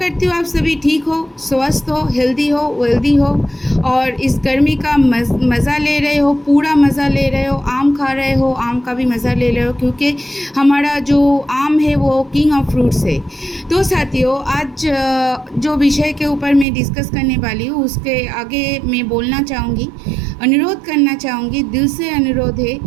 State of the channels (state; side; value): drops out; left; at 16.7 s